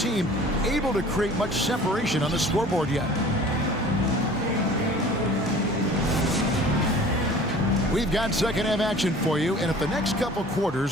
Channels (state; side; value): normal; both; correlation 0.46